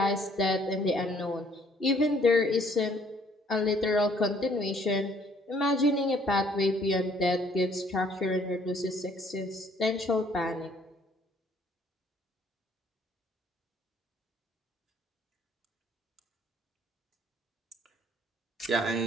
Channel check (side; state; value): both; normal; correlation 0.62